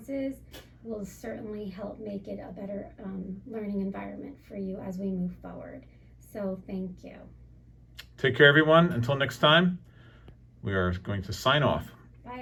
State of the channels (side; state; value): both; identical; correlation 1.00